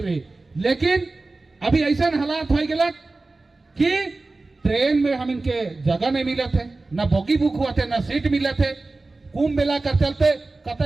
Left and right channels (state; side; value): quieter; left; 3.4 dB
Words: रही, लेकिन अभी ऐसा हालात हो गया कि ट्रेन में हम इनके जगह नहीं मिले थे, न बोगी बुक हुआ थे, न सीट मिले थे। कुंभ मेला कर चलते